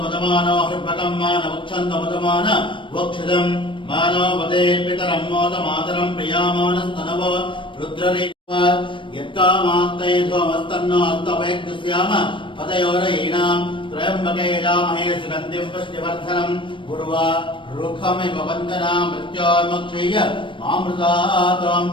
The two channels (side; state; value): right; late; 0.24 ms